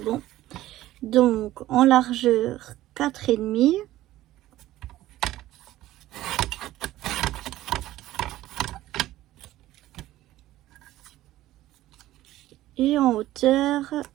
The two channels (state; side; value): quieter; left; 15.2 dB